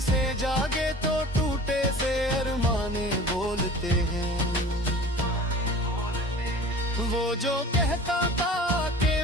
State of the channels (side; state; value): both; normal; correlation 0.42